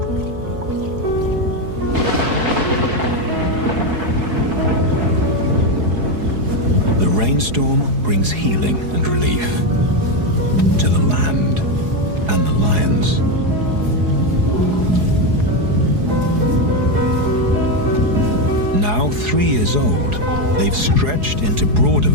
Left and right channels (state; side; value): late; left; 4.8 ms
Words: The rainstorm brings healing and relief to the land and the lions. Now 3 years old, they've stretched into broader